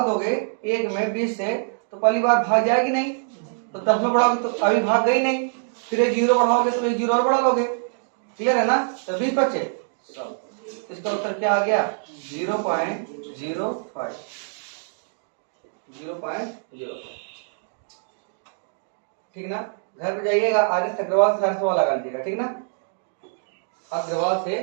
दोगे 1 में 20 से तो पहली बार भाग जाएगी नहीं तो 10 में बढ़ाओगे तो अभी भाग गई नहीं फिर एक जीरो बढ़ाओगे तो एक जीरो और बढ़ा लोगे क्लियर है ना। तो 20 बचे इसका उत्तर क्या आ गया 0.05 ठीक ना। घर पे जाइएगा आगे अग्रवाल से सारे सवाल लगा लीजिएगा ठीक ना। अग्रवाल से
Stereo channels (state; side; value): silent; left; digital silence